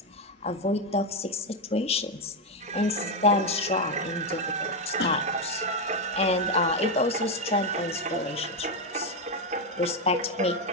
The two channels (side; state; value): both; normal; correlation 0.07